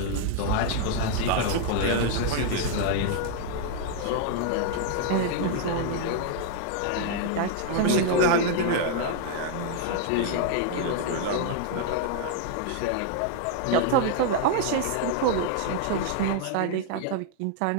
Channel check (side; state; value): both; different; correlation 0.00